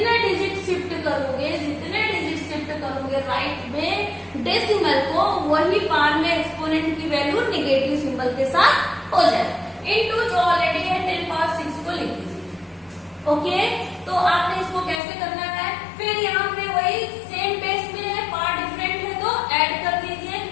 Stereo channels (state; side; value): drops out; right; at 15.0 s